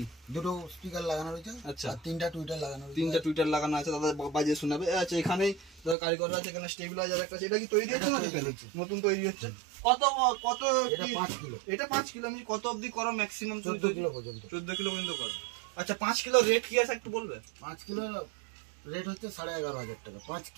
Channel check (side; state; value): left; drops out; at 6.0 s